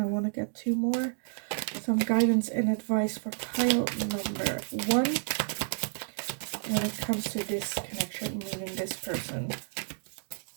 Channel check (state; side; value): silent; left; digital silence